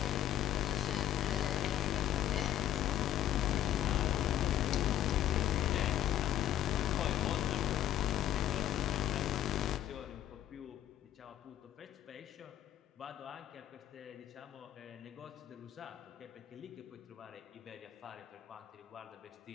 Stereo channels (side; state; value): right; quieter; 11.7 dB